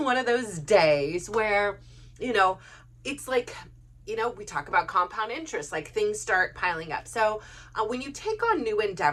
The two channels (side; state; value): both; identical; correlation 1.00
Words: one of those days where, it's like, we talk about compound interest, like things start piling up. So when you take on new